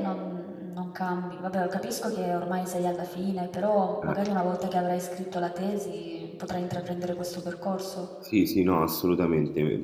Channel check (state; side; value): identical; both; correlation 1.00